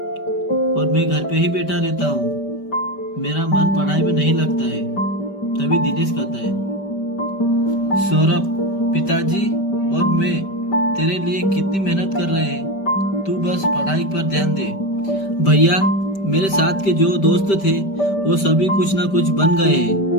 और मैं घर पे ही बैठा रहता हूँ, मेरा मन पढ़ाई में नहीं लगता है। तभी दिनेश कहता है, सौरभ, पिताजी और मैं तेरे लिए कितनी मेहनत कर रहे हैं, तू बस पढ़ाई पर ध्यान दे। भैया, मेरे साथ के जो दोस्त थे वो सभी कुछ ना कुछ बन गए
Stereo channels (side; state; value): right; late; 5.1 ms